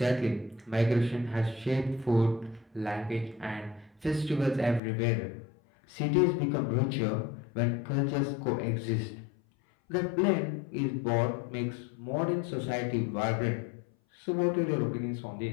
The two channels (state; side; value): drops out; right; at 4.8 s